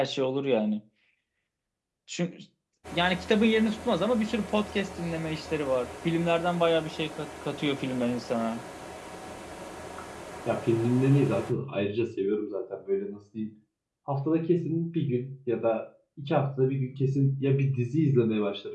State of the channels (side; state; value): both; identical; correlation 1.00